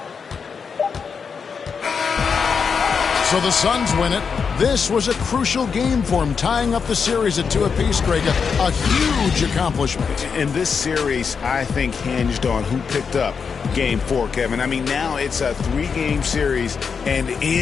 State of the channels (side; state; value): right; quieter; 5.9 dB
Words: So the Suns win it. This was a crucial game for him, tying up the series at 2 apiece, Greg. A huge accomplishment. In this series, I think hinged on who picked up Game 4, Kevin. I mean, now it's a 3-game series, and